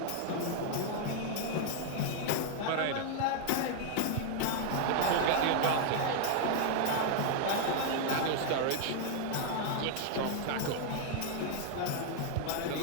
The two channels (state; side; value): different; both; correlation 0.00